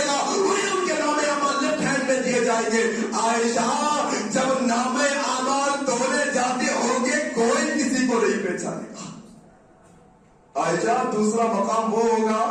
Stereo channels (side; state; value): both; identical; correlation 1.00